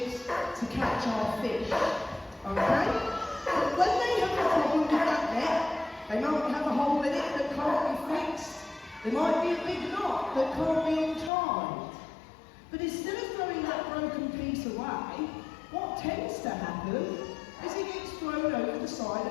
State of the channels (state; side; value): drops out; right; at 11.3 s